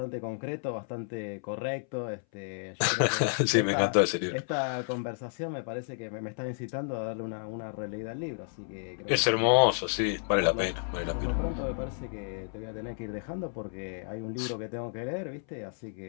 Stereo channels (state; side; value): silent; right; 57 dB below the other